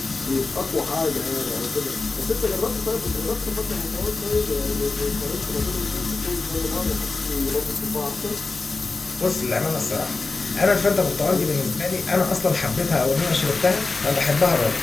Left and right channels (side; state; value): right; quieter; 3.8 dB